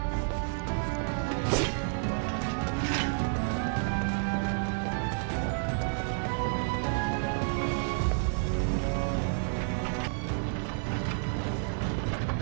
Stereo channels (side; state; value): left; silent; 58 dB below the other